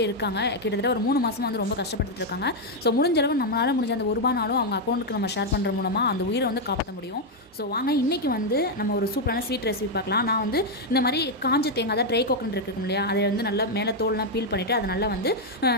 இருக்காங்க. கிட்டத்தட்ட ஒரு 3 மாதமாக வந்து ரொம்ப கஷ்டப்பட்டுட்டு இருக்காங்க. ஸோ முடிஞ்ச அளவு நம்மளால் முடிஞ்ச அந்த ரூபானாலும் அவங்க அக்கௌண்ட்டுக்கு நம்ம ஷேர் பண்ணுற மூலமாக அந்த உயிரை வந்து காப்பாற்ற முடியும். ஸோ வாங்க இன்றைக்கி வந்து நம்ம ஒரு சூப்பரான ஸ்வீட் ரெசிபி பார்க்கலாம். நான் வந்து இந்த மாதிரி காஞ்ச தேங்காய் தான் ட்ரை கோகனட் இருக்கும் இல்லையா, அதை வந்து நல்லா மேலே தோல்லாம் பீல் பண்ணிவிட்டு அதை நல்லா வந்து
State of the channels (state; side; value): normal; both; correlation 0.01